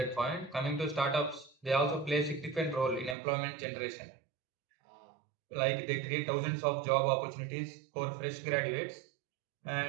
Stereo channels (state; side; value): drops out; left; at 3.2 s